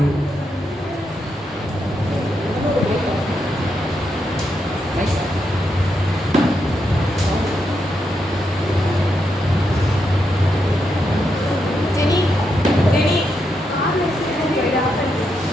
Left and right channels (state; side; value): normal; both; correlation 0.82